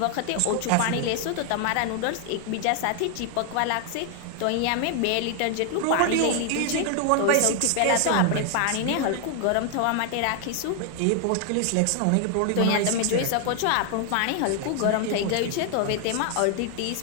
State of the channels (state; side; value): different; both; correlation 0.00